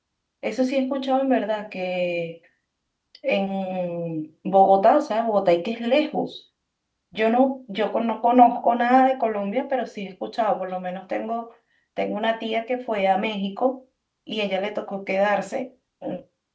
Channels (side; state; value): both; identical; correlation 1.00